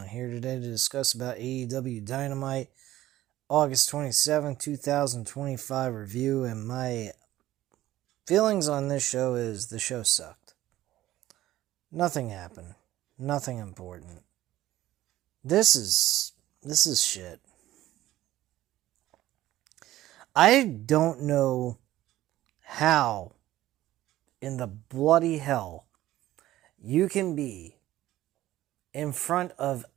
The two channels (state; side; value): quieter; left; 14.9 dB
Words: here today to discuss about AEW Dynamite August 27, 2025 review. And my feelings on this show is the show sucked. Nothing happened. Nothing important. This is shit. I don't know how in the bloody hell you can be in front of